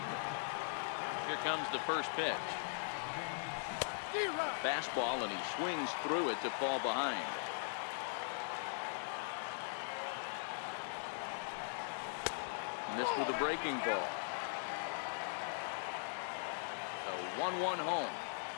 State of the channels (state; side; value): silent; right; digital silence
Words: Here comes the first pitch. Fastball, and he swings through it to fall behind. Missed with a breaking ball. So 1-1 home.